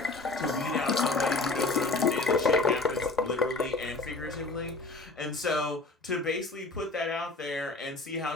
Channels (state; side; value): quieter; right; 3.3 dB